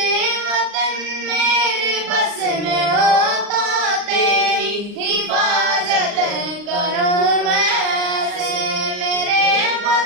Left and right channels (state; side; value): late; left; 39 ms